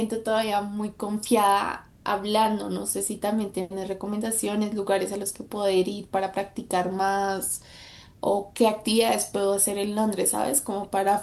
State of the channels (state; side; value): identical; both; correlation 1.00